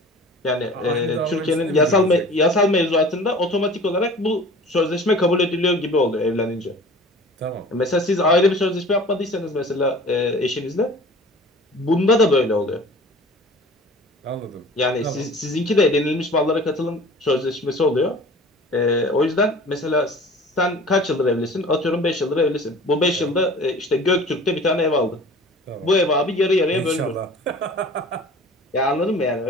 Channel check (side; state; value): both; normal; correlation 0.43